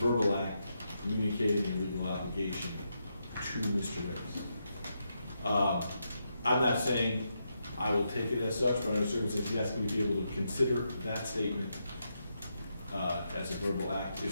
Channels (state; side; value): inverted; both; correlation -0.83